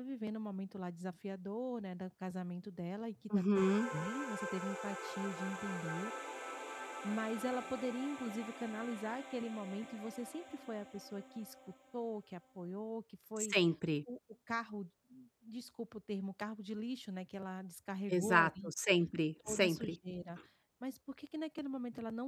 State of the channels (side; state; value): both; identical; correlation 1.00